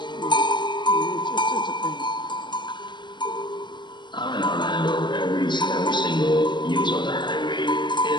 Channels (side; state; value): right; late; 0.22 ms